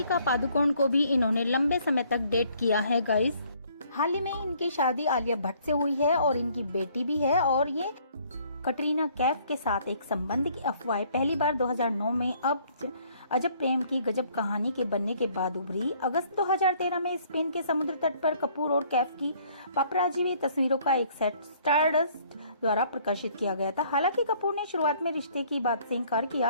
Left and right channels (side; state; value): both; inverted; correlation -0.61